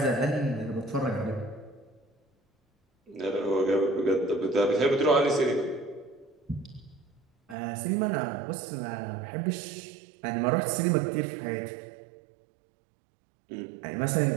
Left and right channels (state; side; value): drops out; left; at 7.6 s